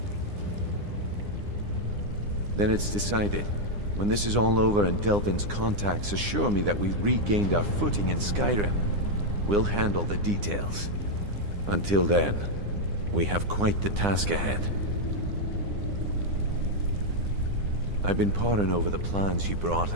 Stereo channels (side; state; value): left; late; 9.8 ms